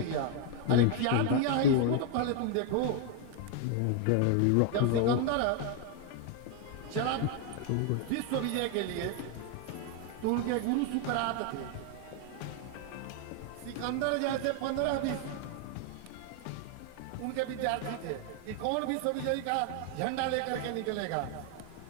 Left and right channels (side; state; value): both; different; correlation 0.00